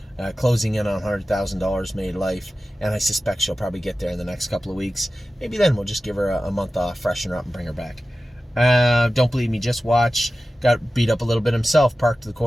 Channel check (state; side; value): normal; both; correlation 0.95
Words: closing in on $100,000 made life, and I suspect she'll probably get there in the next couple of weeks. Maybe then we'll just give her a month off, freshen her up, and bring her back. Don't believe me, just watch. Got beat up a little bit himself, parked to the